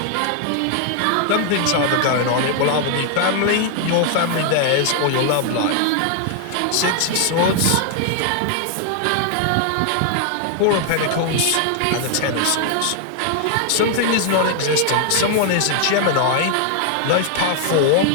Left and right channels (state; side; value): different; both; correlation 0.00